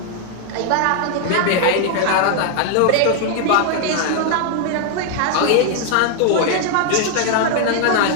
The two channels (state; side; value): different; both; correlation 0.00